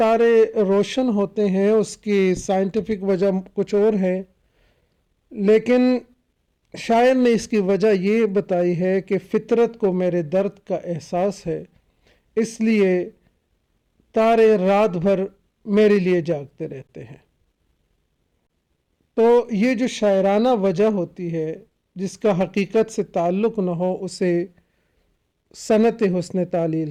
روشن ہوتے ہیں، اس کی سائنٹیفک وجہ کچھ اور ہے، لیکن شاعر نے اس کی وجہ یہ بتائی ہے کہ فطرت کو میرے درد کا احساس ہے، اس لیے تارے رات بھر میرے لیے جاگتے رہتے ہیں. تو یہ جو شاعرانہ وجہ ہوتی ہے جس کا حقیقت سے تعلق نہ ہو، اسے صنعت حسن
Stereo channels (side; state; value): both; identical; correlation 1.00